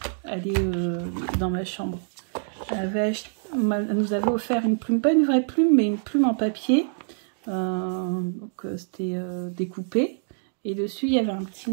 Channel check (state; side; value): silent; left; digital silence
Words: Elle est dans ma chambre. Elle nous avait offert une plume, pas une vraie plume, mais une plume en papier. Donc, c'était découpé. Et dessus, il y avait un petit